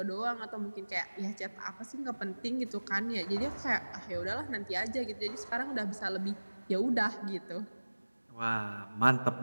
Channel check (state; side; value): inverted; both; correlation -1.00